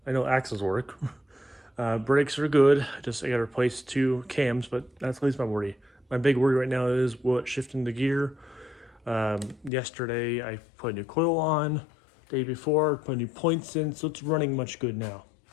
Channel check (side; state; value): right; drops out; at 9.7 s